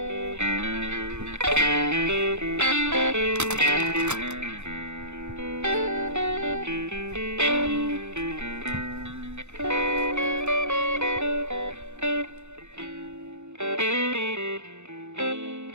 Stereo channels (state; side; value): late; left; 0.82 ms